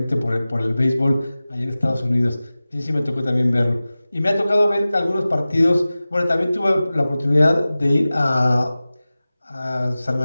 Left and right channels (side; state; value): both; inverted; correlation -0.97